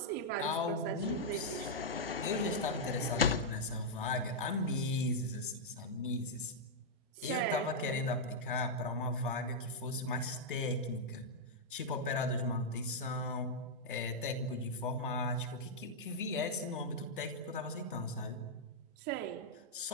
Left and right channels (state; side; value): normal; both; correlation -0.06